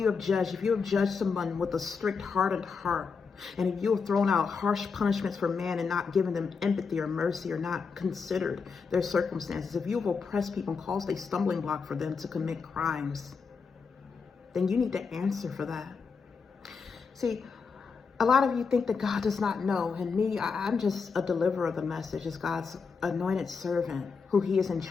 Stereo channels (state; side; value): quieter; right; 5.3 dB